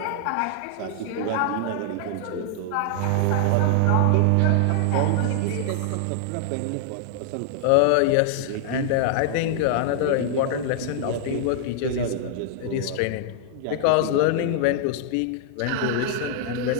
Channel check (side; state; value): both; different; correlation 0.00